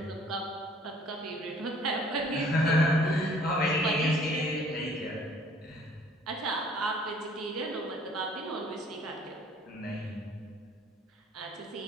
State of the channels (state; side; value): normal; both; correlation 0.56